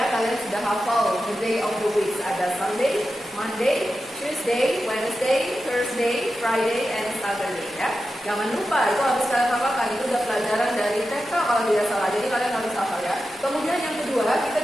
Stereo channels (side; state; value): both; normal; correlation 0.91